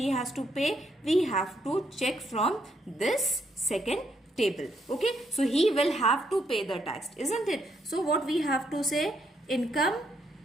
has to pay? We have to check from this second table. Okay, so he will have to pay the tax, isn't it? So what we have to say? Income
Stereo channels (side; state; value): both; normal; correlation 0.74